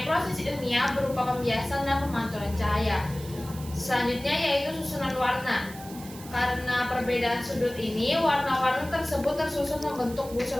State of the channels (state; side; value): noise; right; hiss, 16 dB below the sound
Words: proses ilmiah berupa pembiasan dan pemantulan cahaya. Selanjutnya yaitu susunan warna. Karena perbedaan sudut ini, warna-warna tersebut tersusun membentuk busur